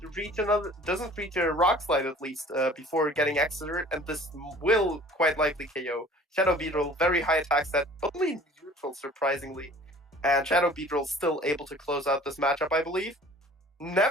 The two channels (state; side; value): normal; both; correlation 0.48